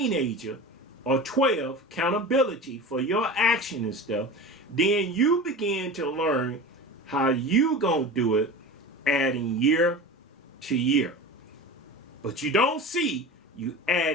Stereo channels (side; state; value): both; normal; correlation 0.31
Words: or 12, accountability for your action and stuff, then you begin to learn how you gonna do it, adding year to year. But you don't see you